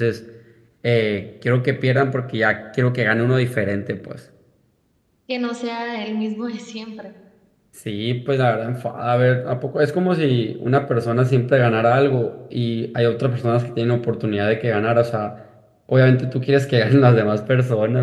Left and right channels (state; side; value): identical; both; correlation 1.00